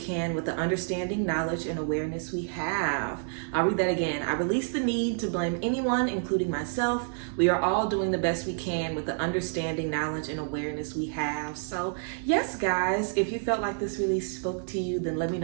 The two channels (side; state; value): left; silent; digital silence